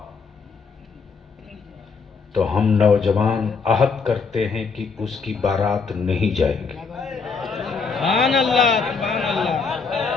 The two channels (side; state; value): right; quieter; 5.0 dB